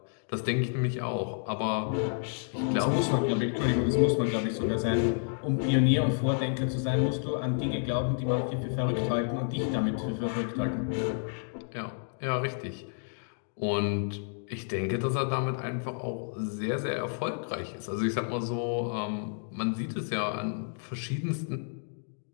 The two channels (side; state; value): right; silent; digital silence